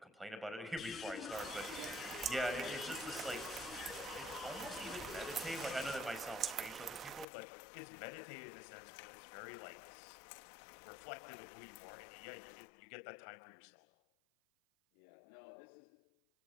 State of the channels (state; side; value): drops out; right; at 7.2 s